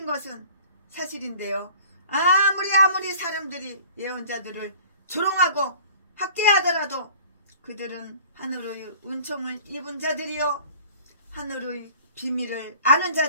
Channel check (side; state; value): both; inverted; correlation -0.47